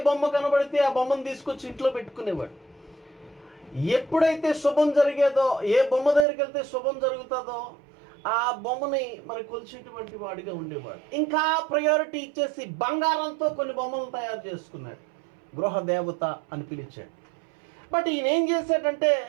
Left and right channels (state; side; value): drops out; left; at 6.2 s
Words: బొమ్మ కనబడితే ఆ బొమ్మను తీసుకొచ్చి ఇంట్లో పెట్టుకునేవాడు. ఎప్పుడైతే శుభం జరిగేదో, ఏ బొమ్మ దగ్గరికి వెళ్తే శుభం జరుగుతుందో ఆ బొమ్మని మరి కొలిచేటువంటి వాడిగా ఉండేవాడు. ఇంకా ప్రయారిటీ ఇచ్చేసి బంగారంతో కొన్ని బొమ్మలు తయారు చేసుకున్నాడు. గృహ దేవత అని పిలిచాడు. బట్ ఈయన ఏం చేశాడంటే,